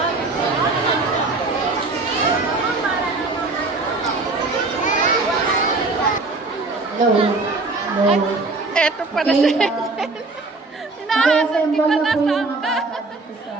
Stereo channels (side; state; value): left; quieter; 3.5 dB